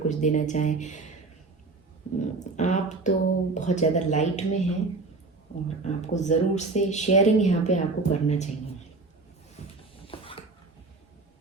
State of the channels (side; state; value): left; quieter; 3.7 dB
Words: देना चाहें। आप तो बहुत ज़्यादा लाइट में हैं और आपको ज़रूर से शेयरिंग यहाँ पे आपको करना चाहिए।